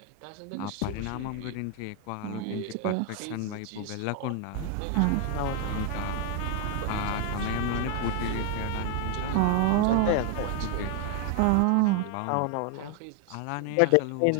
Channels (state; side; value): different; both; correlation 0.00